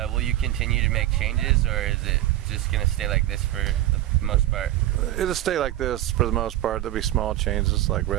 will you continue to make changes, or is it just going to stay like this for the most part? It'll stay like this for the most part. There'll be small changes like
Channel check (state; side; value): quieter; left; 14.5 dB